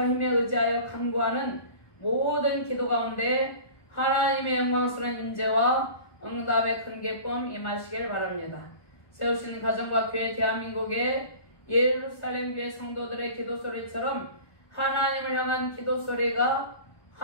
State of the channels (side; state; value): right; late; 1.2 ms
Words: 힘에 의지하여 간구하는 모든 기도 가운데 하나님의 영광스러운 임재와 응답의 큰 기쁨 임하시길 바랍니다. 세우신 가정과 교회 대한민국의 예루살렘 교회 성도들의 기도 소리처럼 하나님을 향한 기도 소리가